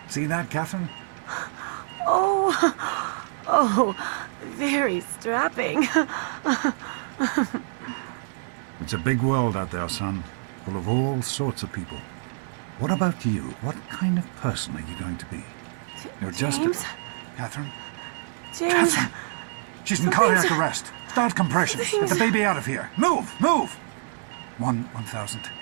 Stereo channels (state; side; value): silent; left; 61 dB below the other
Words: See that, Catherine? Oh, very strapping. It's a big world out there, son, full of all sorts of people. What about you? What kind of person are you going to be? You're just James? Catherine? James? Catherine! She's in cardiac arrest. Start compressions. Get the baby out of here. Move! Move! 1,000.